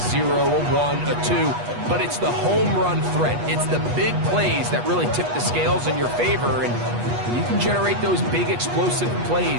a 1, a 2, but it's the home run threat. It's the big plays that really tip the scales in your favor, and when you can generate those big explosive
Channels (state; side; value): late; left; 8.3 ms